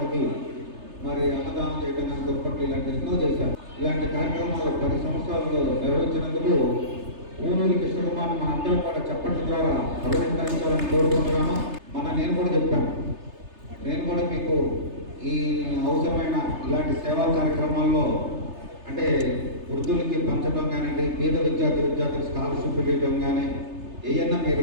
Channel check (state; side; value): late; left; 3.3 ms